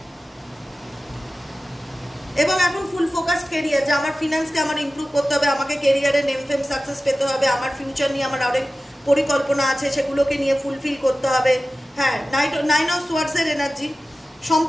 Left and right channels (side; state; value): both; normal; correlation 0.95